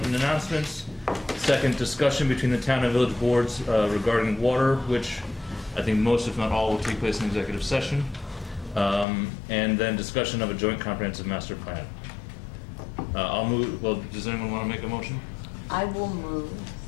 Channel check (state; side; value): drops out; right; at 9.1 s